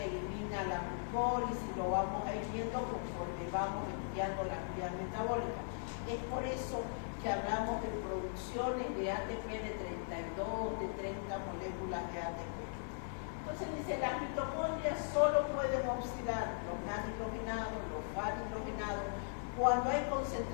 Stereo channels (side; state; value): right; silent; 52 dB below the other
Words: elimina la glucólisis, lo vamos a ir viendo conforme vamos estudiando las vías metabólicas. Es por eso que hablamos de producciones de ATP de 32, de 30 moléculas de ATP. Entonces dice, las mitocondrias solo pueden oxidar los NAD hidrogenados, los FAT hidrogenados, cuando hay